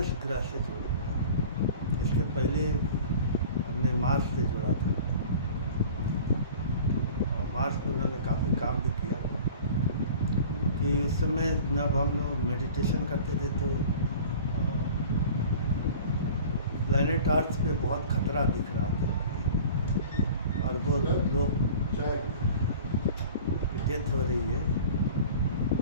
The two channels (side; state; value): both; inverted; correlation -0.42